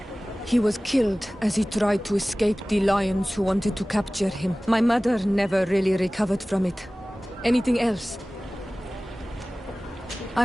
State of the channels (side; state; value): both; normal; correlation 0.98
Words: He was killed as he tried to escape the lions who wanted to capture him. My mother never really recovered from it. Anything else?